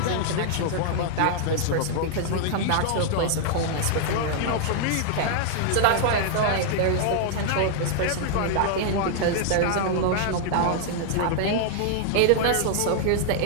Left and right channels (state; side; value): different; both; correlation -0.01